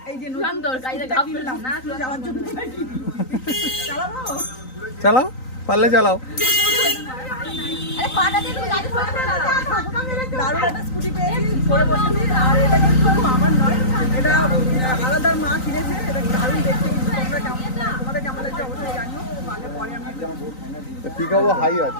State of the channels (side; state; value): right; late; 3.9 ms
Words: চালাও, পারলে চালাও।